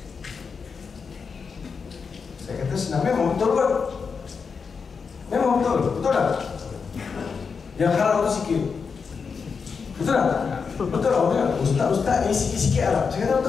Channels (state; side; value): quieter; right; 5.5 dB